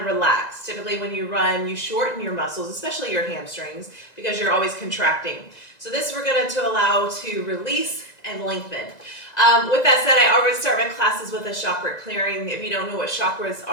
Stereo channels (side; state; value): right; late; 2.0 ms